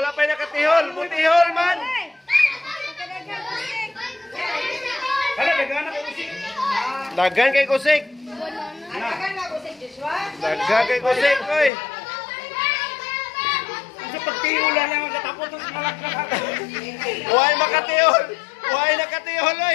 pa'y nakatihol. Butihol man. Dagan kay kusik. Dagan kay kusik, oy. Sa pagtihula lang ang katapos ng malakad. Huwag makatihol. Huwag nakatihol,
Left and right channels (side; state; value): right; drops out; at 11.7 s